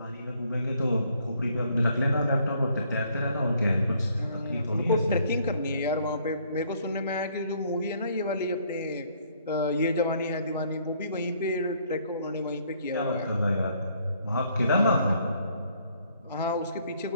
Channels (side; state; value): both; inverted; correlation -0.65